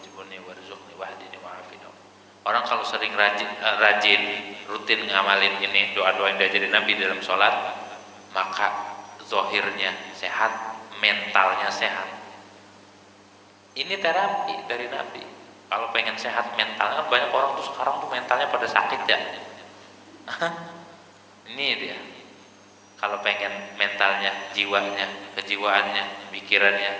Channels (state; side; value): identical; both; correlation 1.00